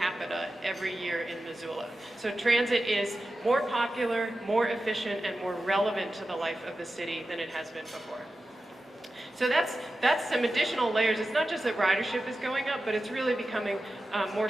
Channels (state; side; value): normal; both; correlation 0.93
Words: every year in Missoula. So transit is more popular, more efficient, and more relevant to the life of the city than it has been before. So that's some additional layers. It's not just that ridership is going up, but it's really becoming more